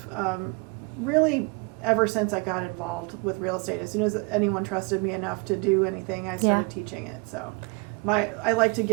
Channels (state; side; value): quieter; left; 28.7 dB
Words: really, ever since I got involved with real estate, as soon as anyone trusted me enough to do anything, I started teaching it. So I like to